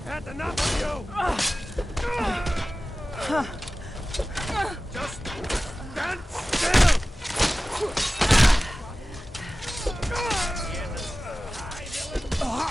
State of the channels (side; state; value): both; normal; correlation 0.96